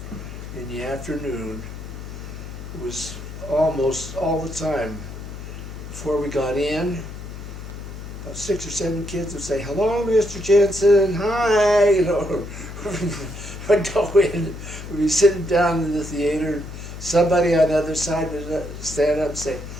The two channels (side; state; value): left; noise; hum, 11 dB below the sound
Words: in the afternoon, it was almost all the time before we got in, about 6 or 7 kids would say, "Hello, Mr. Jenson, hi," you know. I'd go in, we'd be sitting down in the theater, and somebody on the other side would stand up and say,